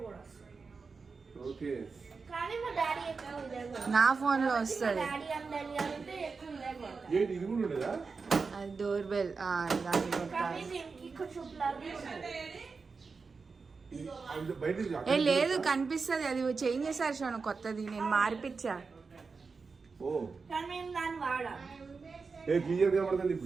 ఓకే నా ఫోన్ లో వస్తుంది. ఏంటి ఇది కూడా ఉండదా అది డోర్ బెల్. దాన్ని కొట్టాలి. ఏ లేదు కనిపిస్తుంది. అది చేంజ్ చేశారు షోను కొత్తది. నేను మార్పిచ్చా. ఓ ఏ క్లియర్ గా పడుతుంది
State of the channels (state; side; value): quieter; left; 4.7 dB